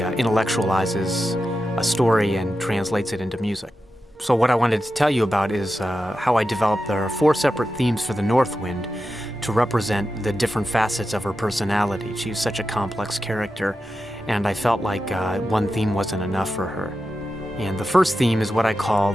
a story and translates it into music. So what I wanted to tell you about is how I developed. There are 4 separate themes for the Northwind to represent the different facets of her personality. She's such a complex character, and I felt like one theme wasn't enough for her. And the first theme is what I call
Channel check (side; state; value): both; normal; correlation 0.91